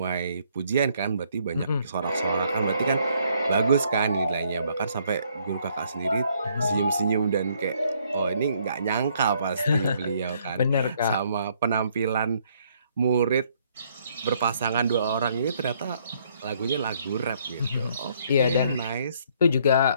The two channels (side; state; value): both; inverted; correlation -0.67